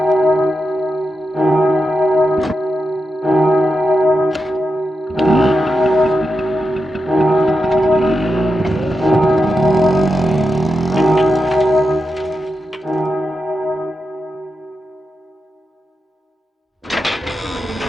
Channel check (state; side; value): normal; both; correlation 0.88